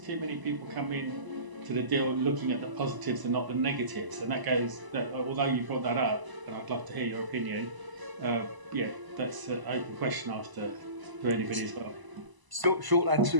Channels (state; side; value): late; left; 1.0 ms